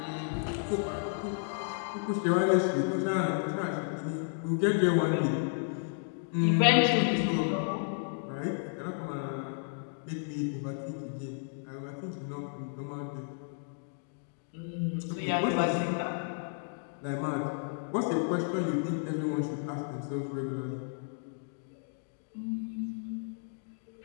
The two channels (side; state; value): right; silent; digital silence